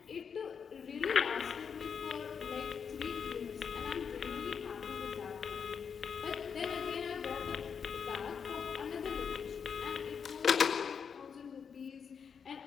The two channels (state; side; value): quieter; right; 6.6 dB